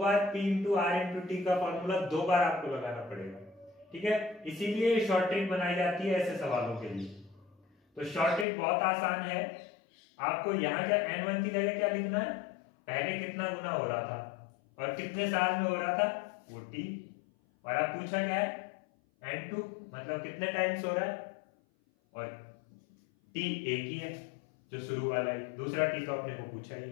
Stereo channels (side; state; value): right; drops out; at 8.5 s